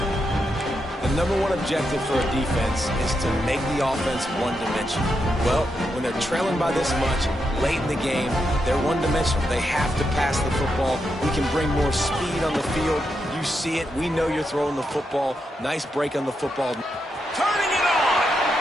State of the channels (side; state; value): both; normal; correlation 0.84